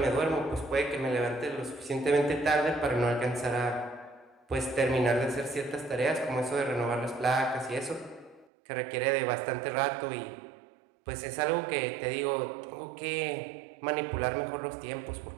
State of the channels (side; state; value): left; drops out; at 8.5 s